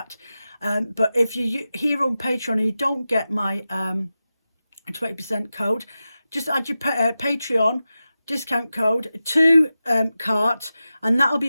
But if you're here on Patreon and you don't get my 20% code, just add your Patreon discount code to cart, and that'll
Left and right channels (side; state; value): both; inverted; correlation -0.93